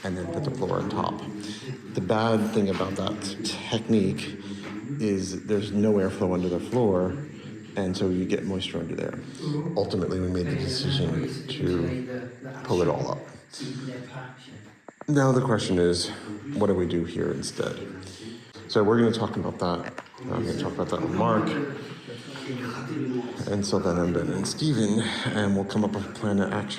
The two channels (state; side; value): identical; both; correlation 1.00